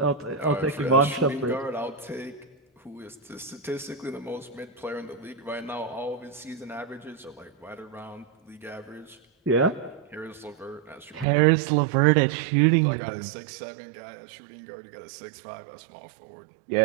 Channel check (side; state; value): left; drops out; at 11.2 s